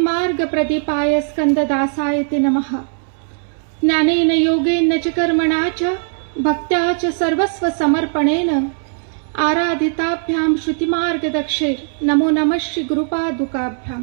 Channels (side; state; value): left; silent; 67 dB below the other